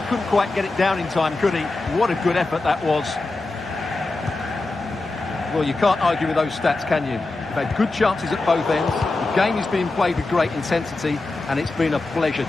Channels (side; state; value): right; quieter; 3.2 dB